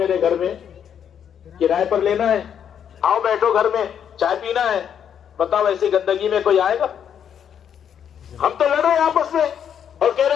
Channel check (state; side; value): quieter; right; 8.5 dB